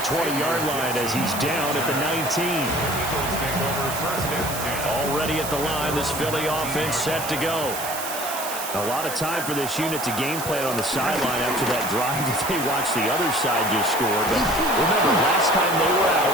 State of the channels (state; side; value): noise; right; hiss, 7 dB below the sound